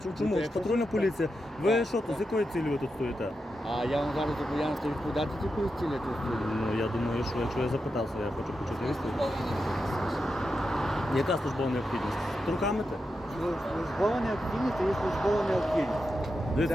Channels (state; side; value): normal; both; correlation 0.88